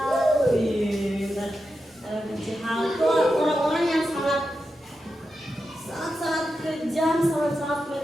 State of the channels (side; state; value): both; normal; correlation 0.89